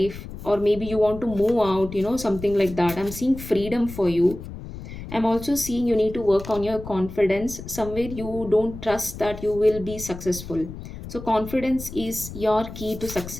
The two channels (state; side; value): noise; left; rumble, 12 dB below the sound